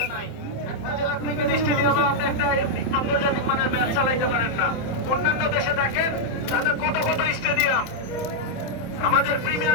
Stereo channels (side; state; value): right; late; 27 ms